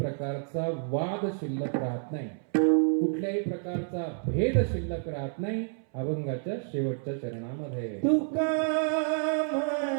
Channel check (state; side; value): silent; left; 58 dB below the other